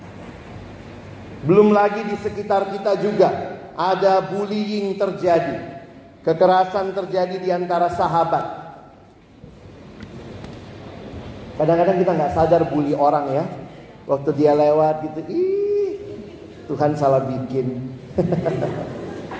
Belum lagi di sekitar kita juga ada bullying terjadi. Kekerasan terjadi di antara sahabat. Kadang-kadang kita gak sadar bully orang ya. Waktu dia lewat gitu, Tuhan salah bikin.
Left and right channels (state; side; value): identical; both; correlation 1.00